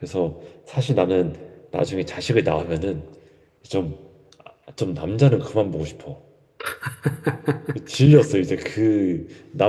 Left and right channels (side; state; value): both; identical; correlation 1.00